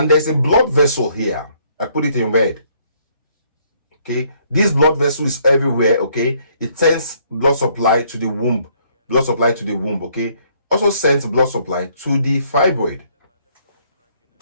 there's a blood vessel here. I put it in red. Okay, this blood vessel is everywhere. Okay, it sends blood supply to the womb. Blood supply to the womb. Okay, also sends blood supply to the fibroid.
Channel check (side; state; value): both; inverted; correlation -0.66